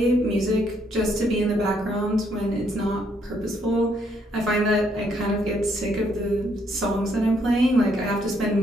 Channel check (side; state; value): both; normal; correlation 0.71